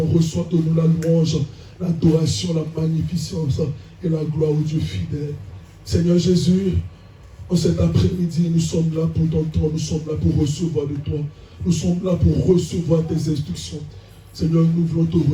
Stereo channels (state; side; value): identical; both; correlation 1.00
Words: Reçois de nous la louange, l'adoration, la magnificence et la gloire au Dieu fidèle. Seigneur Jésus, en cet après-midi, nous sommes là pour t'entendre, nous sommes là pour recevoir de toi. Nous sommes là pour recevoir tes instructions. Seigneur, nous voulons te